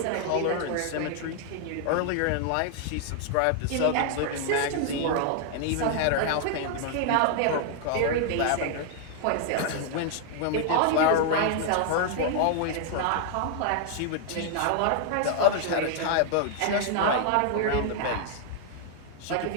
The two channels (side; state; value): both; different; correlation 0.00